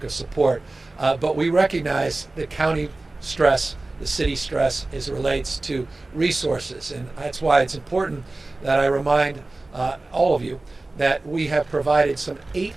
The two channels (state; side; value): quieter; left; 3.0 dB